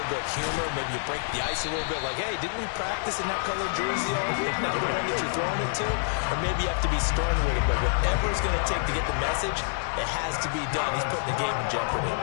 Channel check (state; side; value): silent; right; digital silence